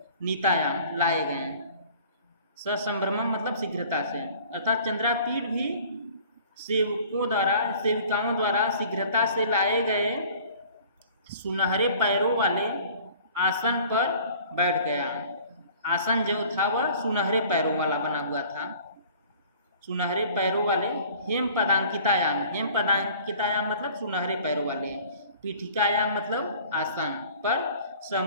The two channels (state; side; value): inverted; both; correlation -0.50